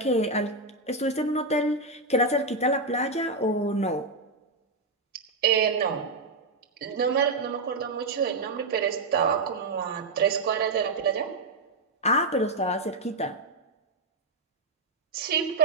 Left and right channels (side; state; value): left; quieter; 3.3 dB